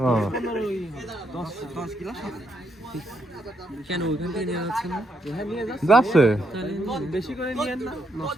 ও 10 গ্লাস হবে। কেন ওইখান থেকে নিয়ে যাচ্ছে না? হ্যাঁ নিয়ে যাচ্ছে। যাচ্ছে তাহলে বেশি করে নিয়েন না,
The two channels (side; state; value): both; normal; correlation 0.77